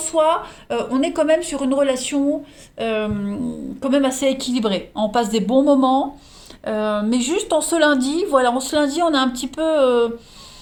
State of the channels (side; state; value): both; identical; correlation 1.00